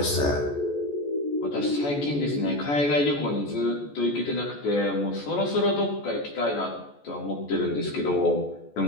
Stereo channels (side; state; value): right; late; 14 ms